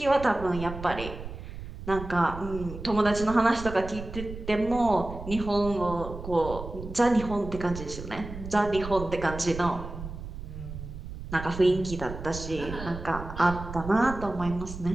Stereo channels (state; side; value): noise; right; rumble, 10 dB below the sound